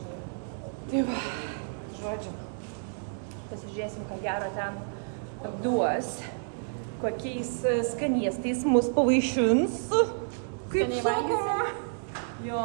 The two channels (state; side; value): silent; left; digital silence